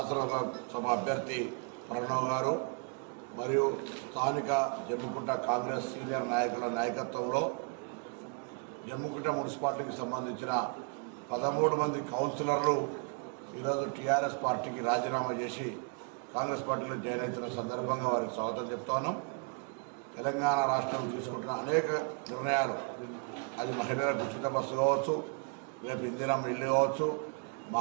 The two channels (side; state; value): left; quieter; 35.3 dB